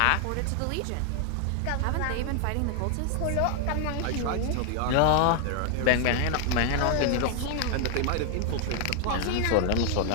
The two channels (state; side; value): different; both; correlation 0.00